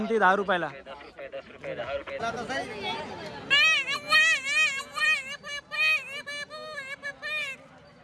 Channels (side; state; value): both; identical; correlation 1.00